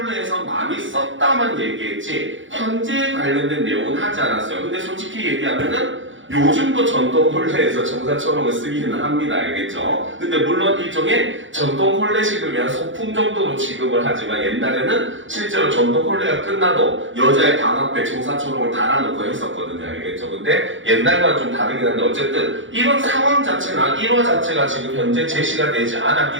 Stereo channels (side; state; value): left; late; 0.56 ms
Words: 많이 썼다만 얘기했지 현재에 관련된 내용은 하지 않았어요. 근데 솔직히 얘기하면은 요즘도 전통 혼례에서 청사초롱을 쓰기는 합니다. 알겠죠? 근데 물론 일종의 전통 혼례식을 위한 소품 정도로 지급을 하지만 옛날에는 실제로 전통 혼례가 끝나도 여자의 방 앞에 청사초롱을 달아놓고 했었거든요. 알겠죠? 근데 옛날과는 좀 다르긴 한데 어쨌든 이런 상황 자체나 일화 자체가 지금 현재 제시가 되지